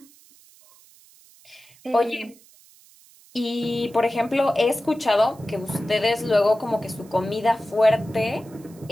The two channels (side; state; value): right; noise; hiss, 26 dB below the sound